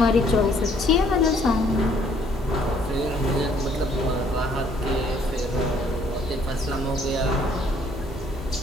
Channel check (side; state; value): both; normal; correlation 0.63